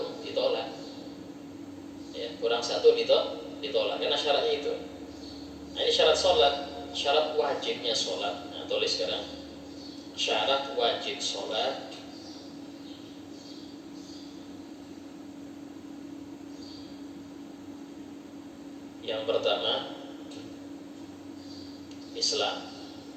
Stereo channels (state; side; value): identical; both; correlation 1.00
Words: ditolak, ya, kurang satu ditolak karena syaratnya itu. Nah ini syarat sholat, syarat wajibnya sholat. Nah tulis sekarang syarat wajib sholat. Yang pertama Islam,